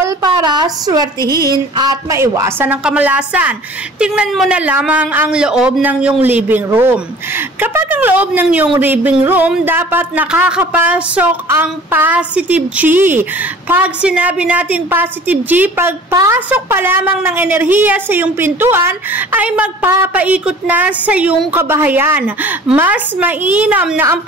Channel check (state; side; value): normal; both; correlation 0.47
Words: para swertihin at maiwasan ang kamalasan. Tingnan mo na lamang ang loob ng iyong living room. Kapag ang loob ng iyong living room, dapat nakakapasok ang positive chi. Pag sinabi natin positive chi, pagpasok pa lamang ng enerhiya sa iyong pintuan ay magpapaikot na sa iyong kabahayan. Mas mainam na ang